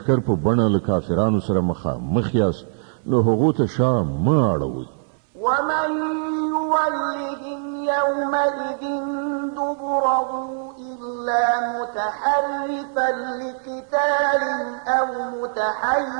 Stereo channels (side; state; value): left; silent; 64 dB below the other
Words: په بڼه له کافرانو سره مخ یاست نو هغو ته شا مه اړوئ. ومن يولهم يومئذ دبره إلا متحرفا لقتال أو